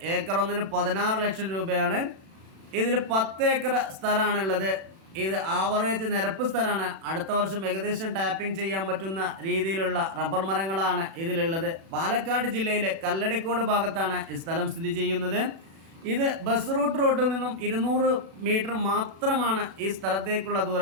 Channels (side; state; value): left; late; 36 ms